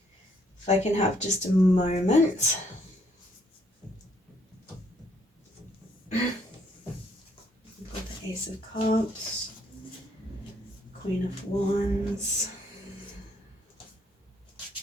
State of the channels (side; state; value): both; normal; correlation 0.69